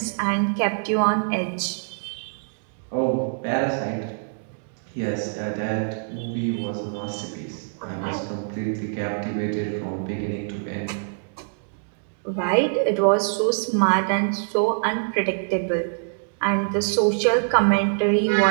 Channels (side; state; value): left; silent; 62 dB below the other